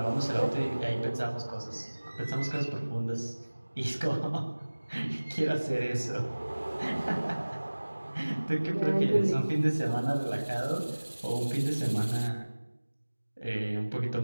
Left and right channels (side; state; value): both; inverted; correlation -1.00